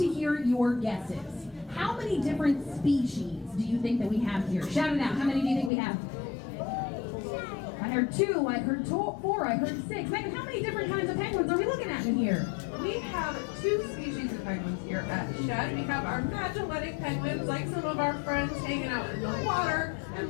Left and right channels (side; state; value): right; drops out; at 5.7 s